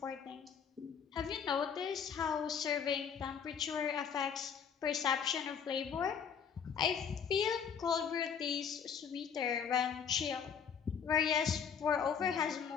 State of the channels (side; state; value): right; quieter; 7.2 dB